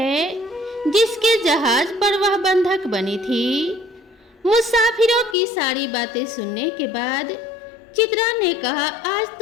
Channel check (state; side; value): drops out; right; at 5.4 s